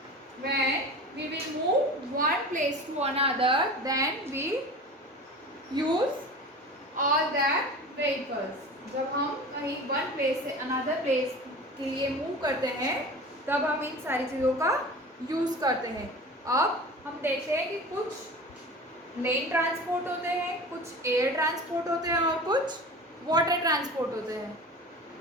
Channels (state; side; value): normal; both; correlation 0.36